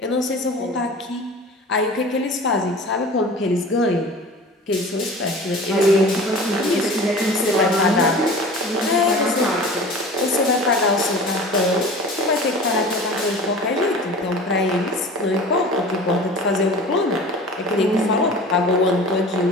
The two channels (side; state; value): both; normal; correlation 0.39